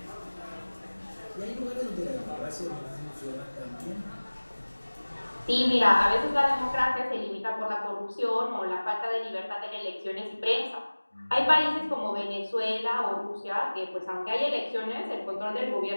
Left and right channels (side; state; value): both; inverted; correlation -1.00